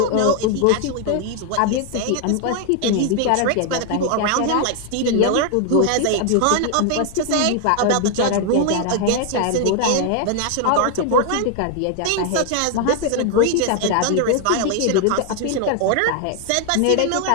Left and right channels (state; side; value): different; both; correlation 0.00